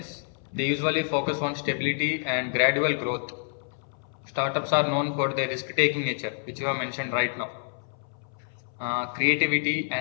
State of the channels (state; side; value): silent; right; 60 dB below the other